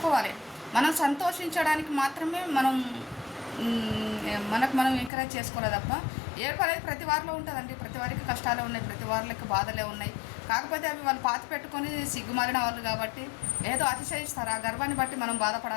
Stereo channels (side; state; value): right; drops out; at 5.1 s